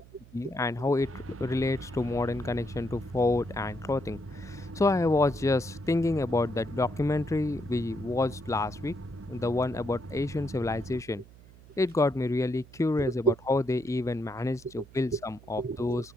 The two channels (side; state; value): right; noise; hum, 22 dB below the sound